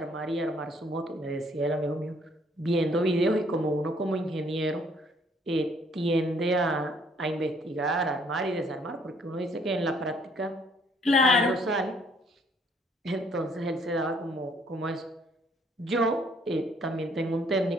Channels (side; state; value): both; normal; correlation 0.64